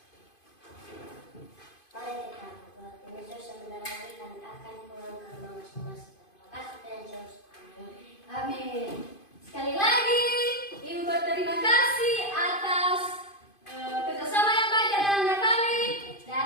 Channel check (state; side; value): late; right; 2.5 ms